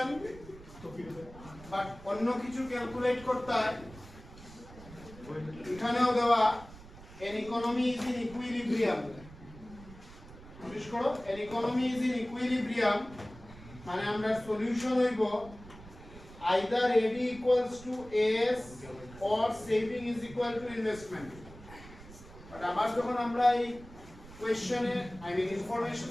but অন্য কিছু ক্যালকুলেট করতে হয় এখানেও দেওয়া an economy is in equilibrium notice করো an economy is in equilibrium মানে আমরা সলিউশন হইব either AD equals to AS or saving is equal to investment but আবার যখন আমরা এই কোশ্চেনে আই মিন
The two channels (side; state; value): right; noise; rumble, 18 dB below the sound